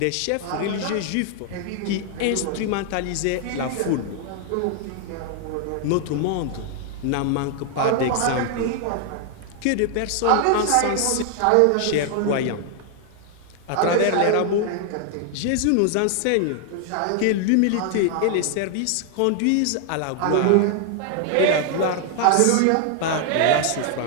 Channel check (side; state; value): both; different; correlation 0.00